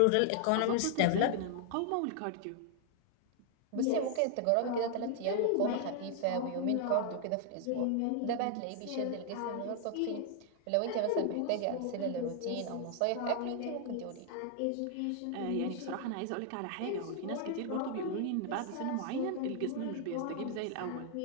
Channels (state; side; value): different; both; correlation 0.00